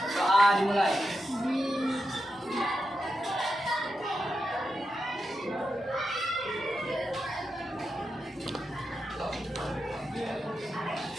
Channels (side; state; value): both; normal; correlation 0.88